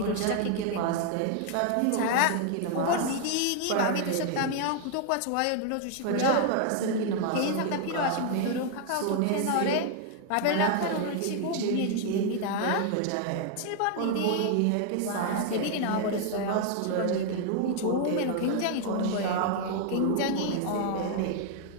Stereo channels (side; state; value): both; different; correlation 0.00